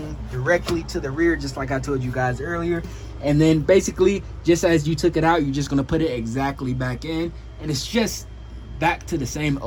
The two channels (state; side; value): identical; both; correlation 1.00